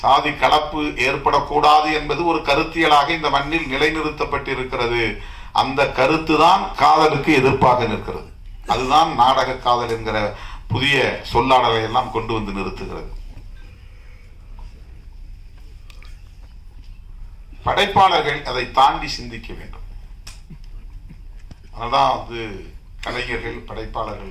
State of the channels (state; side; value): identical; both; correlation 1.00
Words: கலப்பு ஏற்படக்கூடாது என்பது ஒரு கருத்தியலாக இந்த மண்ணில் நிலைநிறுத்தப்பட்டிருக்கிறது. அந்த கருத்து தான் காதலுக்கு எதிர்ப்பாக நிற்கிறது. அதுதான் நாடக காதல் என்கிற புதிய சொல்லாடலை எல்லாம் கொண்டு வந்து நிறுத்துகிறது. படைப்பாளர்கள் அதை தாண்டி சிந்திக்க வேண்டும். அதனால்தான் கலைஞர்கள்,